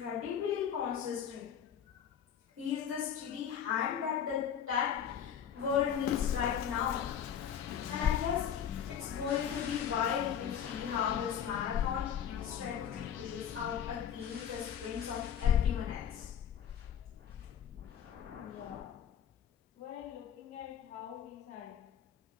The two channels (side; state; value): right; quieter; 8.7 dB